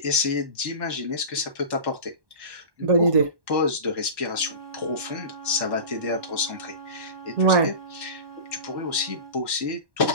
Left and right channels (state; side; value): late; left; 1.1 ms